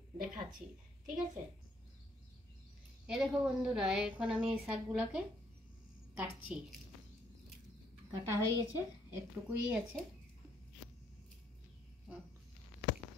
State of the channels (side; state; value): both; normal; correlation 0.69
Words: দেখাচ্ছি, ঠিক আছে? এ দেখো বন্ধুরা, এখন আমি এই শাকগুলোকে কাটছি। কাটা হয়ে গেছে, একটুকুই আছে।